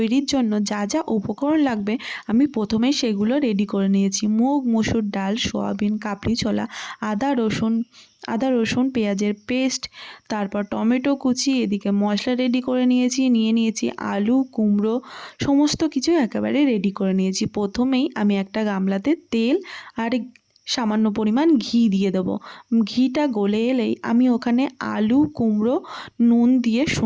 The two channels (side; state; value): both; identical; correlation 1.00